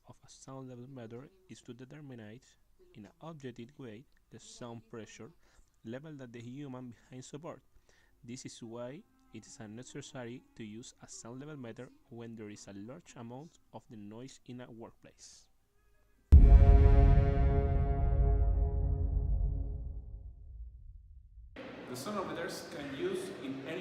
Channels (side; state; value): both; identical; correlation 1.00